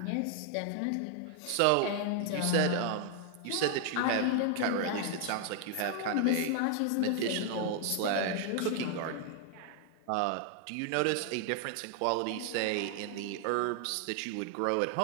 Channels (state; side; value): different; both; correlation 0.00